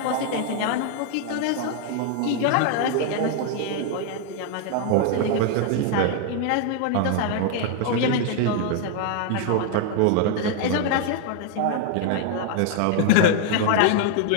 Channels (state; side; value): different; both; correlation 0.00